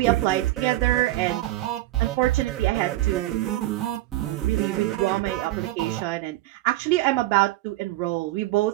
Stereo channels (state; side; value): quieter; left; 16.7 dB